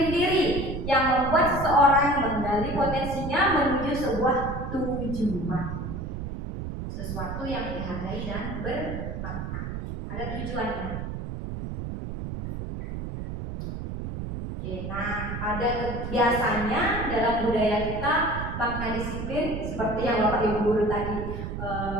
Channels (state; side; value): noise; right; rumble, 6 dB below the sound